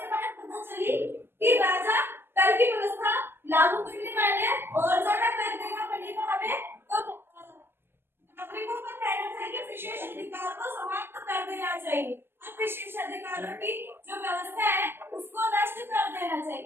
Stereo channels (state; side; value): late; left; 0.11 ms